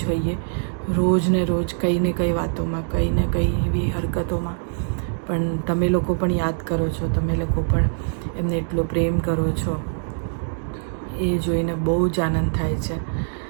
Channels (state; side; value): silent; left; digital silence